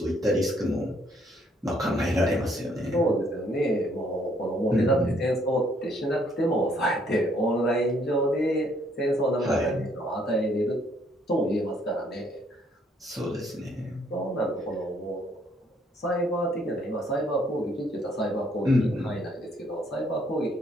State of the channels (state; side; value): normal; both; correlation 0.67